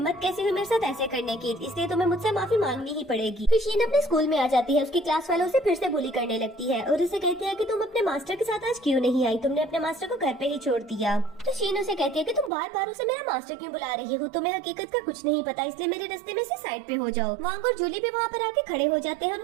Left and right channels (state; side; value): drops out; left; at 12.5 s